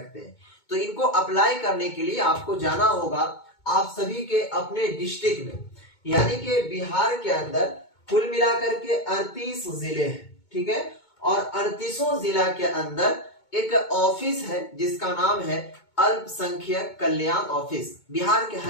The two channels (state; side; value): late; right; 2.2 ms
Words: हैं। तो इनको अप्लाई करने के लिए आपको जाना होगा आप सभी के अपने डिस्ट्रिक्ट में, यानी कि बिहार के अंदर कुल मिलाकर के 38 जिले हैं। ठीक है, और 38 जिला के अंदर एक ऑफिस है जिसका नाम है अल्पसंख्यक कल्याण ऑफिस। बिहार के